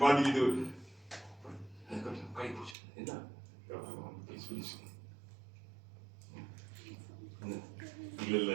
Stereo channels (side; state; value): left; drops out; at 2.8 s